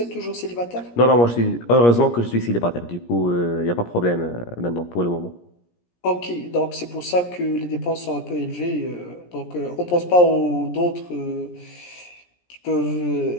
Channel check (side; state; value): right; late; 17 ms